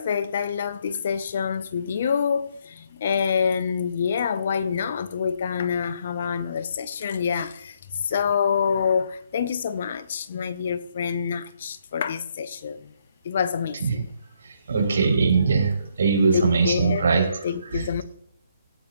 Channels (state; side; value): inverted; both; correlation -0.72